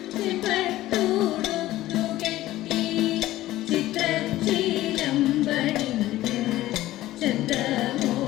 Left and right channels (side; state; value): right; quieter; 15.6 dB